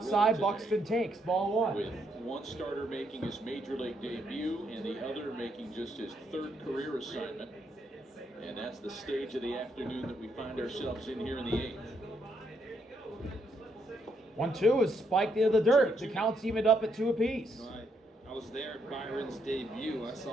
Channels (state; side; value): normal; both; correlation 0.76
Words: Buxton takes ball one. With one starter making his major league debut and the other making just his third career assignment. And that's the stage of the afternoon that we find ourselves in here in the 8th. 1-2 is spiked into the dirt. The count's evened up at 2 apiece. I was there at Byron's debut. I